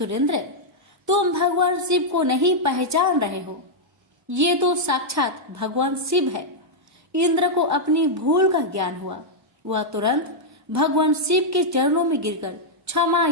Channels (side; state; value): both; normal; correlation -0.05